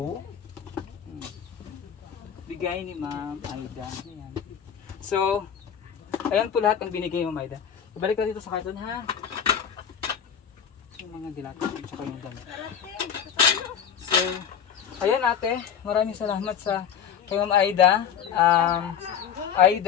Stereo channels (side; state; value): right; quieter; 8.2 dB